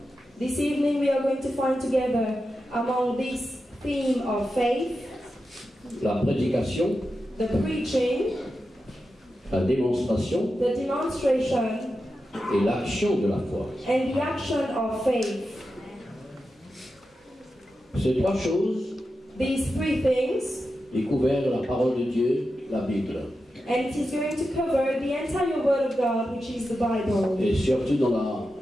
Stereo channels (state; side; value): normal; both; correlation 0.90